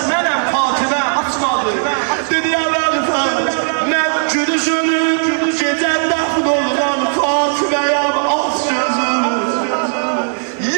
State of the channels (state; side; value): silent; left; digital silence